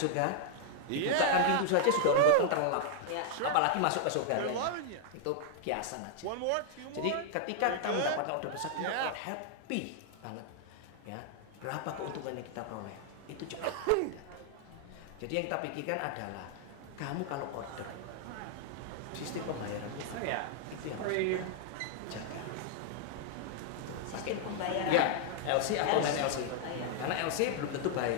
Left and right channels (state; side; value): different; both; correlation 0.00